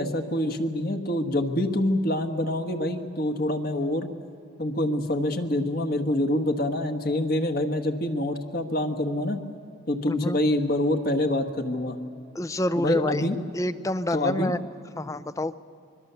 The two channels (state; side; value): normal; both; correlation 0.57